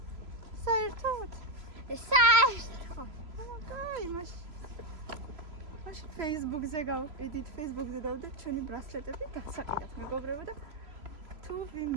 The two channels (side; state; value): left; late; 3.0 ms